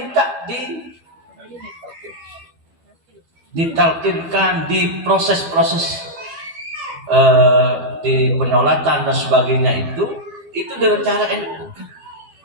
ditalkinkan di proses-proses di penyolatan dan sebagainya itu dengan cara NU.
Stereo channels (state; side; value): late; left; 12 ms